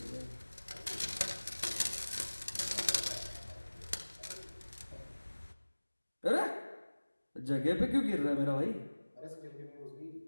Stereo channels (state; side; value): inverted; both; correlation -1.00